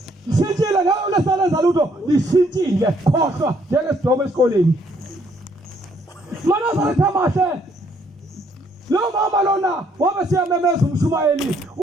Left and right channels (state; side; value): normal; both; correlation 0.68